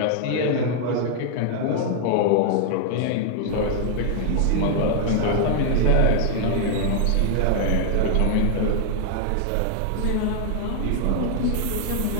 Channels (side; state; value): both; different; correlation 0.00